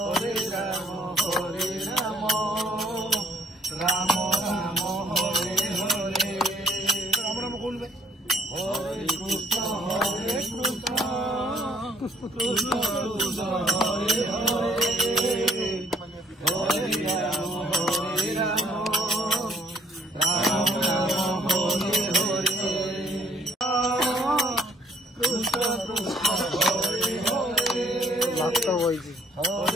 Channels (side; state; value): both; normal; correlation 0.62